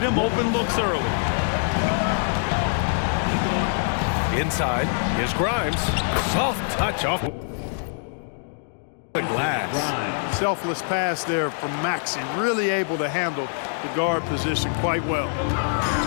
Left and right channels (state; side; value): silent; right; digital silence